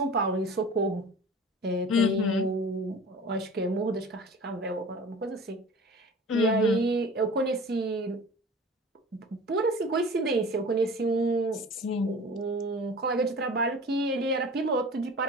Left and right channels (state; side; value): normal; both; correlation 0.40